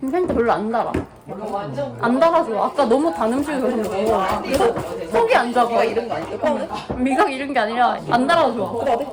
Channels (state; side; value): identical; both; correlation 1.00